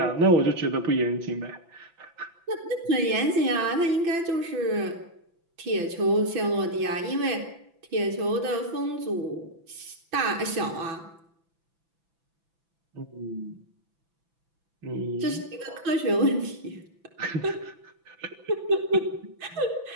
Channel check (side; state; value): left; late; 6.0 ms